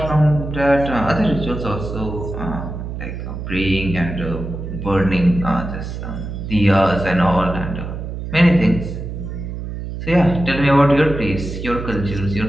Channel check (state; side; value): noise; right; hum, 7 dB below the sound